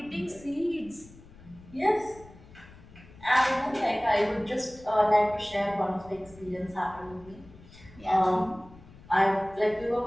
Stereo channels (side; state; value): left; noise; rumble, 21 dB below the sound